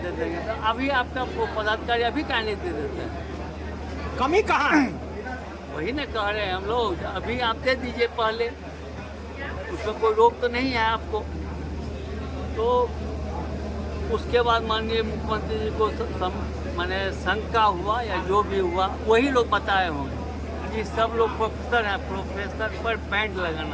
दे देंगे, तो अभी आपका पदाधिकारी अभी क्या नहीं दे देते हैं? कमी कहाँ है? वही ना कह रहे हैं हम लोग, अभी आप दे दीजिए पहले, उसमें कोई रोक तो नहीं है आपको। तो उसके बाद माननीय मुख्यमंत्री जी को माने शंका हुआ या जो भी हुआ, वही लोग बताए होंगे कि सब लोग प्रोफेसर हैं, प्रोफेसर पर बैंड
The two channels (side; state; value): both; identical; correlation 1.00